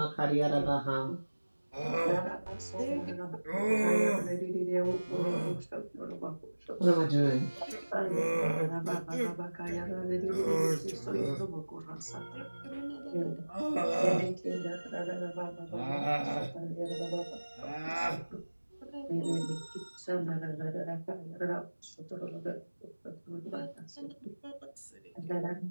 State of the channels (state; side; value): inverted; both; correlation -1.00